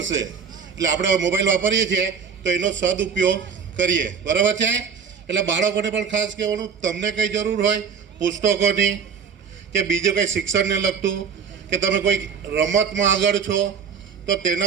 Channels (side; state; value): left; quieter; 6.4 dB